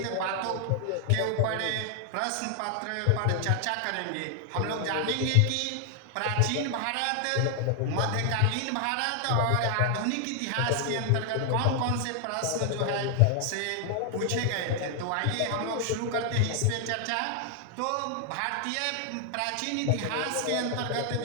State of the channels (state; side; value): different; both; correlation 0.00